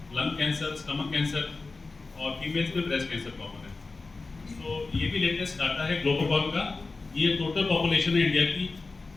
लंग कैंसर, स्टमक कैंसर, और फीमेल्स में ब्रेस्ट कैंसर कॉमन है। तो ये भी लेटेस्ट डाटा है ग्लोबोकॉन का। ये टोटल पॉपुलेशन है इंडिया की।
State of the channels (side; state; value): right; quieter; 3.8 dB